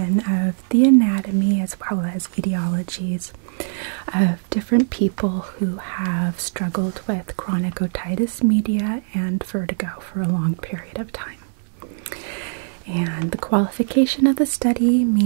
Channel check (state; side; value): silent; left; digital silence